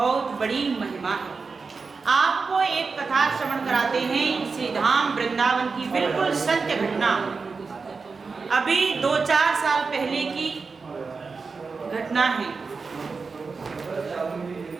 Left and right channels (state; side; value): quieter; left; 4.6 dB